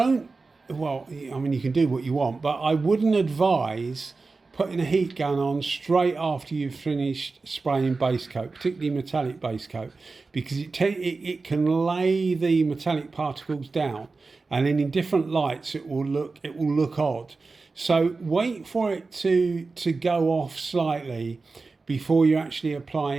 well, I mean, you can do what you want, but I wouldn't advise putting a heat gun on straight after you've finished spraying base coat, particularly metallic base coat, because it can lay the metallic particles down, and then in different lights it will look odd. So wait for it to go off slightly before you actually apply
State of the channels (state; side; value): quieter; left; 3.9 dB